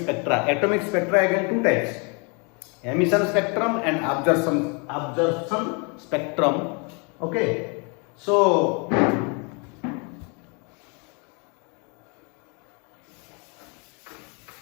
Atomic spectra again two types: emission spectrum and absorption spectrum. Okay, so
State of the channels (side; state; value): right; quieter; 33.6 dB